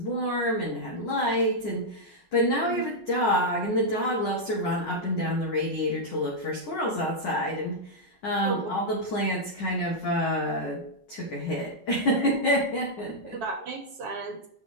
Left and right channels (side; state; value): right; late; 5.5 ms